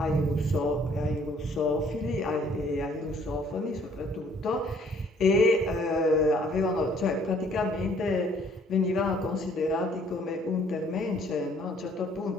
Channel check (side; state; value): both; normal; correlation 0.60